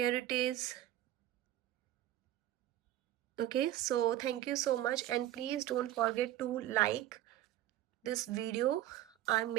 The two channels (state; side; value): quieter; left; 13.4 dB